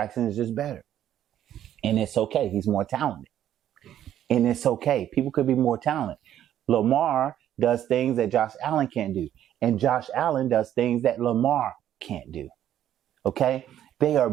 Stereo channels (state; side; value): quieter; left; 11.2 dB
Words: is just better. And it's okay. He's more talented. And it's okay. People could be more talented. Lamar does things that Josh Allen can't do. And Josh Allen does things that Lamar can't do. Okay? They are